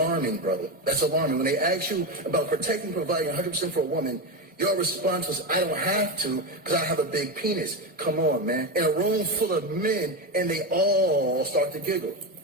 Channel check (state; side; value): normal; both; correlation 0.15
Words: brother. That's alarming. When they asked you about protecting and providing 100% for a woman, your response was, I don't have to because I have a big penis. Come on, man. In a room full of men, and they all start to giggle.